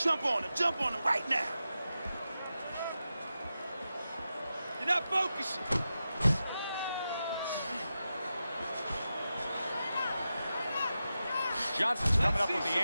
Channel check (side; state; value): both; inverted; correlation -0.91